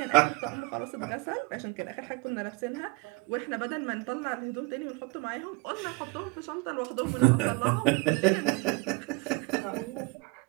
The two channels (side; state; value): left; quieter; 26.6 dB